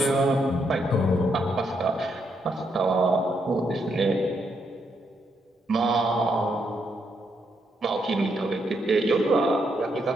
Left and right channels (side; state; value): both; normal; correlation 0.78